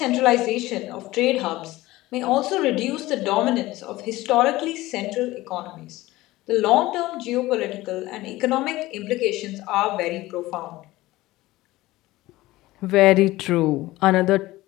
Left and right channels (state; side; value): quieter; right; 18.1 dB